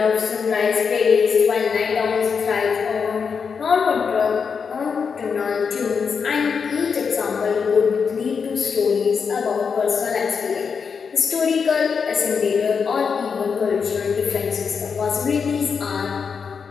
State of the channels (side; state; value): right; quieter; 6.0 dB